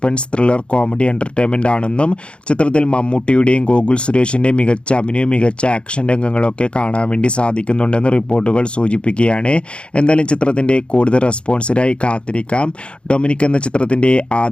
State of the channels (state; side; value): late; right; 0.056 ms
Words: ത്രില്ലർ കോമഡി എൻ്റർടൈൻമെൻ്റ് ആണെന്നും ചിത്രത്തിൽ മമ്മൂട്ടിയുടെയും ഗോകുൽ സുരേഷിൻ്റെയും മികച്ച അഭിനയവും മികച്ച ആക്ഷൻ രംഗങ്ങളൊക്കെ കാണാൻ വേണ്ടി സാധിക്കുന്നുണ്ടെന്ന് റിപ്പോർട്ടുകൾ സൂചിപ്പിക്കുകയാണ്. എന്തായാലും ചിത്രത്തിൻ്റെ കൂടുതൽ റെസ്പോൺസിനായി കാത്തിരിക്കാം. ഡൊമിനിക് എന്ന ചിത്രത്തിൻ്റെ